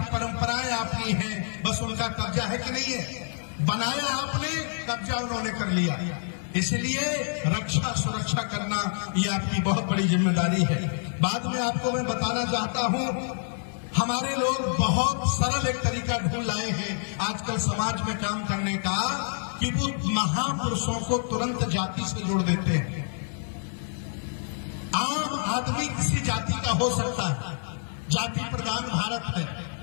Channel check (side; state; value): right; silent; digital silence